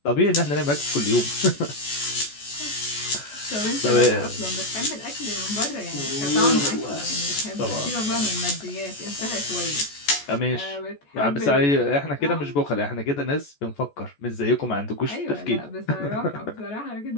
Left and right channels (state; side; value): late; right; 14 ms